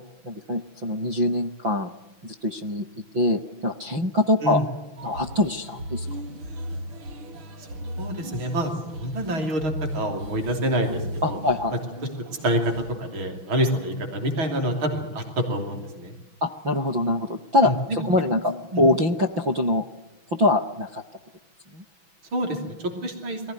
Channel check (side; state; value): left; late; 6.1 ms